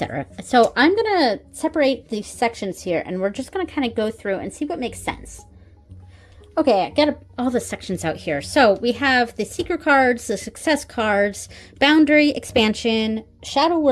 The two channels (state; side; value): identical; both; correlation 1.00